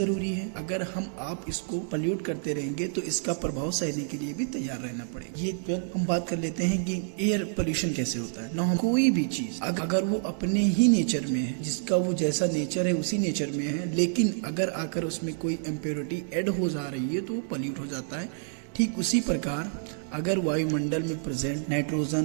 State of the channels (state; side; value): silent; left; 59 dB below the other